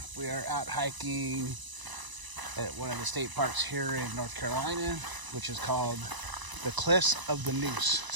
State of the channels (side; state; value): left; late; 1.0 ms